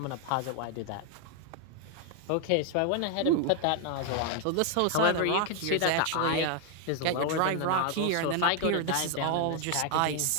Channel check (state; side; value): different; both; correlation 0.00